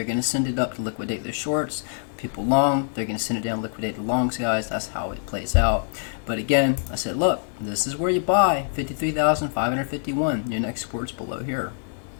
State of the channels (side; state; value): right; silent; digital silence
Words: going to send it up to liquidate their shorts. People long, they're going to send it down, liquidate the longs, guys. That's how it plays out. But again, I said, look, this is where you buy 53,551. Your next support's below here.